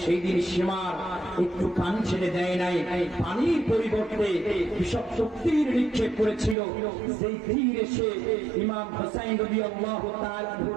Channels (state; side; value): drops out; left; at 6.6 s